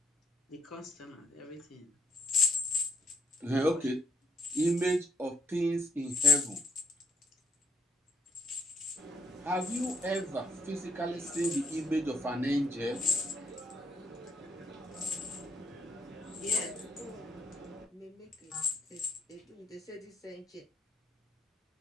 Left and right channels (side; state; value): both; normal; correlation 0.69